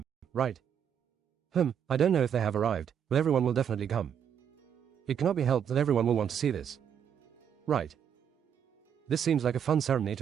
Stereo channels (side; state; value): left; quieter; 8.4 dB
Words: right? I don't know if they have arrived, but everyone will definitely come. It cannot be helped that everyone will want to see this. Right. This seems like a fun ceremony